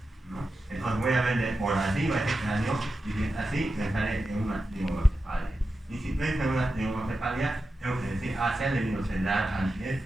¿no? Entonces voy a ver por arriba este cráneo y si es así, pensaré en una trígonocefalia. Y si pienso en una trígonocefalia, tengo que decir, se ha debido cerrar antes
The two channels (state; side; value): normal; both; correlation 0.90